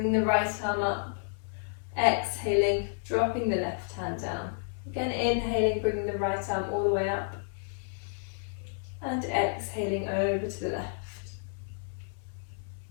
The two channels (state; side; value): silent; right; 57 dB below the other